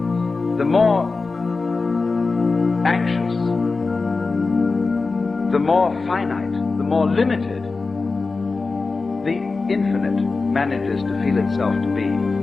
the more anxious, the more finite, the more limited the infinite manages to feel itself to be,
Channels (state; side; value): quieter; right; 4.0 dB